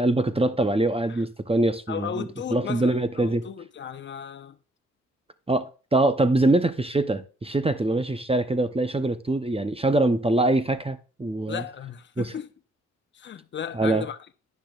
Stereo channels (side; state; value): both; normal; correlation 0.68